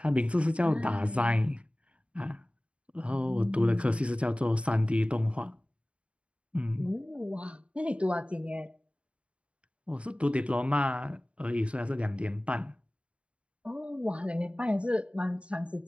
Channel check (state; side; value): late; left; 0.060 ms